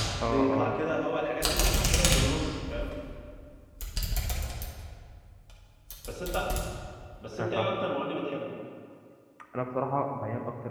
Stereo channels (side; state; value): both; identical; correlation 1.00